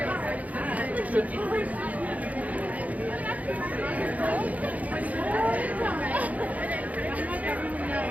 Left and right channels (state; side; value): late; left; 0.073 ms